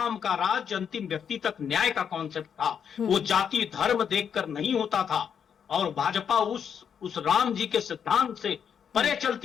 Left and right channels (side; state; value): right; quieter; 7.6 dB